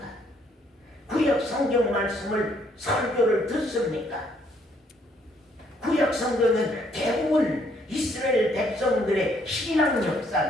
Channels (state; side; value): normal; both; correlation 0.68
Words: 구약 성경 말씀을 설교를 듣습니까? 구약 성경은 대부분 이스라엘 백성들의 신앙